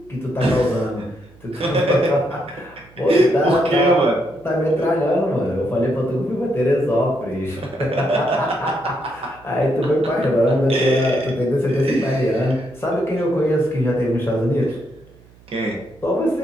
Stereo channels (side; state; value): right; noise; hum, 26 dB below the sound